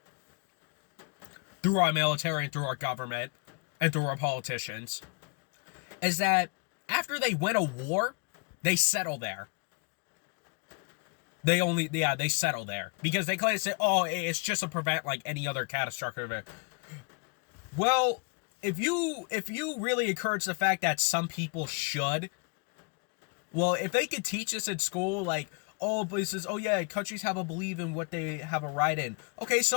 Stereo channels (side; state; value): right; quieter; 34.8 dB